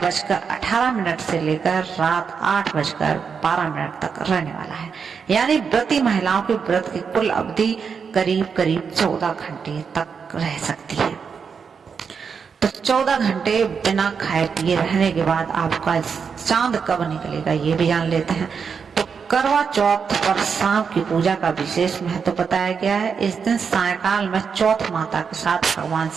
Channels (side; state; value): left; quieter; 6.1 dB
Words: से लेकर रात 8:12 तक रहने वाला है। यानी व्रती महिलाओं के व्रत की कुल अवधि करीब 14 घंटे तक रह सकती है। तो 14 घंटे बिना खाए पिए रहने के बाद आपका चांद कब निकलेगा ये भी जान लेते हैं। तो करवा चौथ पर शाम की पूजा का विशेष महत्व बताया गया है। इस दिन सायकाल में चौथ माता के साथ भगवान